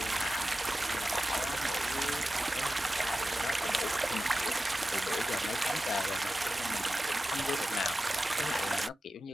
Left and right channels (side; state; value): both; normal; correlation 0.94